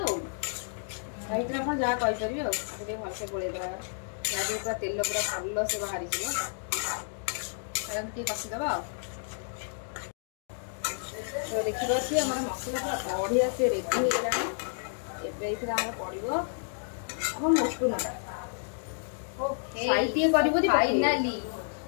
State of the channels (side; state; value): right; silent; digital silence